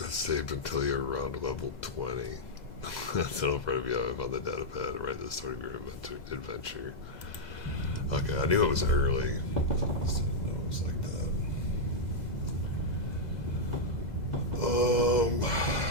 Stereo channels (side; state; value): right; late; 2.0 ms